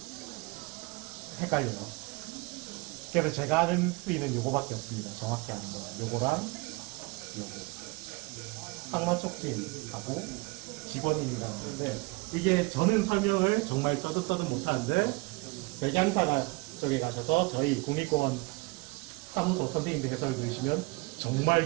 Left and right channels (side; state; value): left; quieter; 26.7 dB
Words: 헷갈려요. 그래서 제가 아는 스윙은 요거밖에 없습니다. 정확히 아는 거는 요거랑 요거. 항마촉진하고 직원인이라는 건데 이게 저는 설명을 정말 떠듬떠듬 못하는데 백양사가 쪽에 가셔서 저희 국립공원 사무소 선생님들 해설 들으시면